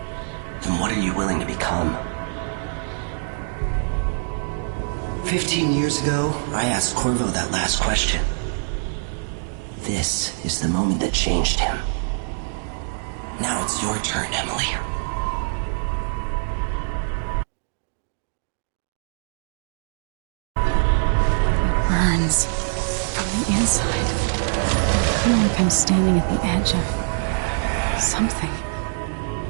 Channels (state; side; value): silent; left; digital silence